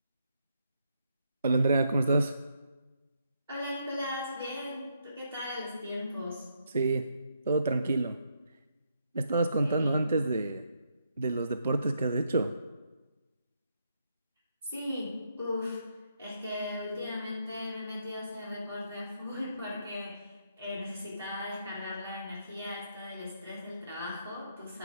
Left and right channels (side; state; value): both; inverted; correlation -0.77